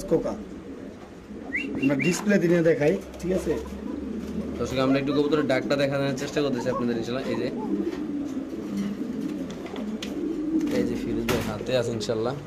কোকা আমরা ডিসপ্লে দিনে দেখাই ঠিক আছে দর্শক আমরা একটু কবুতরের ডাকটা দেখানোর চেষ্টা করতেছি আপনাদের ইনশাআল্লাহ এই যে ফিরোজ ভাই হাতে আছে ইনশাআল্লাহ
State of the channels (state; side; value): identical; both; correlation 1.00